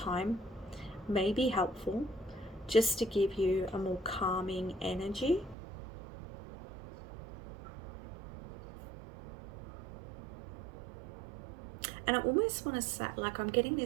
may be helpful, just to give you a more calming energy. And I almost want to say, like, I'm getting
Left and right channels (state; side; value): drops out; left; at 5.6 s